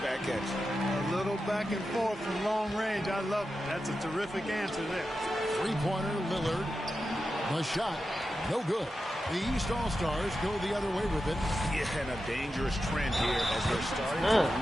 at you. A little back and forth from long range. I love it. That's a terrific answer there. Three-pointer, Lillard. The shot, no good. The East All-Stars go the other way with it. Yeah, and a dangerous trend here as they're starting to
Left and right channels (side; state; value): both; normal; correlation 0.91